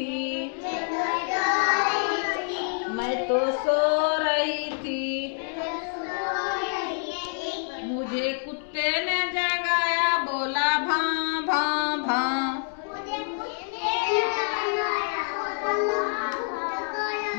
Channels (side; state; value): right; silent; 56 dB below the other